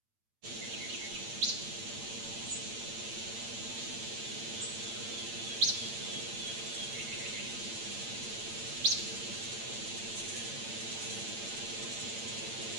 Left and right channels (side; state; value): left; late; 8.8 ms